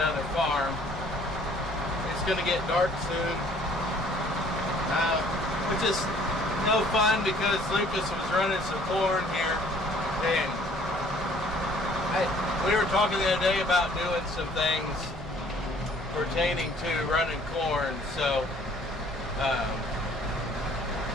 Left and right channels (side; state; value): both; normal; correlation 0.57